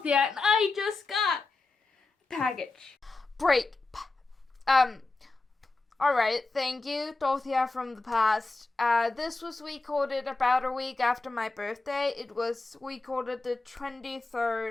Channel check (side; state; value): right; quieter; 3.4 dB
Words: Dorothea, and I just got a package. Break. Alright, thank you, Dorothea from the past. This was recorded about a week after my birthday. It was recorded the